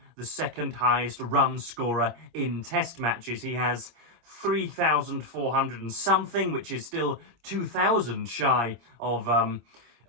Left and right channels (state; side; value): late; left; 26 ms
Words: the second highest run scorer in test matches. He has 3,400 and something, which is still 2,000 shy of